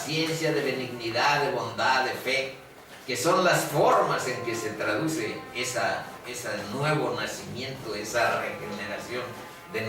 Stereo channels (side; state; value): both; identical; correlation 1.00